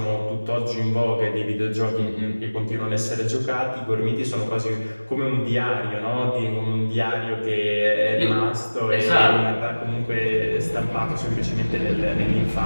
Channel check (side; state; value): both; inverted; correlation -1.00